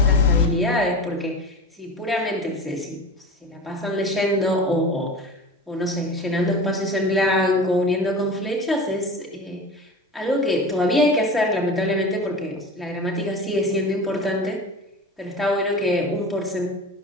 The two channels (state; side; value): normal; both; correlation 0.33